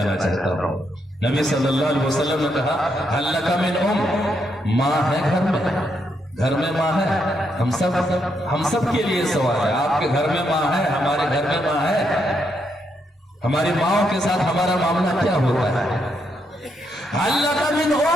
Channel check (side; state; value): both; normal; correlation 0.78